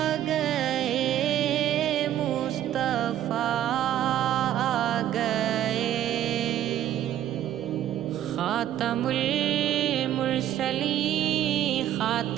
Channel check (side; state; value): left; quieter; 11.7 dB